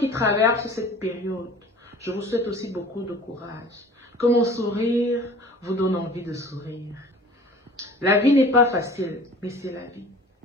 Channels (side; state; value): both; normal; correlation 0.45